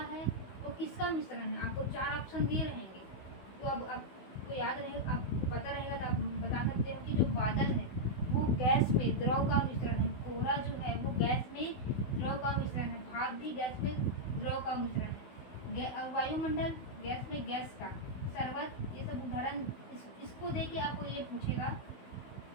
है वो किसका मिश्रण है। आपको 4 ऑप्शन दिए रहेंगे, तो अब आपको याद रहेगा, आपको पता रहेगा तो आप बता सकते हो कि जो बादल है वो गैस में द्रव का मिश्रण है, कोहरा जो है वो गैस में द्रव का मिश्रण है, भाप भी गैस में द्रव का मिश्रण है, वायुमंडल गैस में गैस का, शरबत, ये सब उदाहरण इसको दे के आपको ये पूछेगा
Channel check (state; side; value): late; right; 16 ms